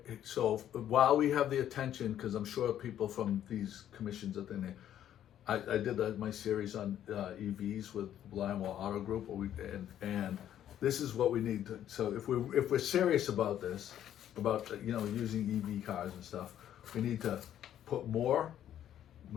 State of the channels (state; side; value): quieter; right; 10.9 dB